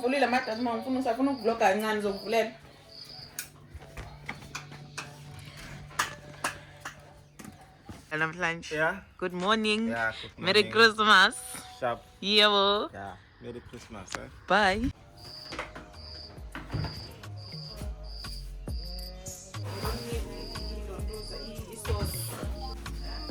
amadasi uma ngifuna usafuna ukuvloga kancane ngizokuvulela. Namhlanje. Yeah. Good morning. Yeah, good morning. Merry Christmas. Sharp. Yebo. Yeah. Merry Christmas. Bye.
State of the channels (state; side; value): identical; both; correlation 1.00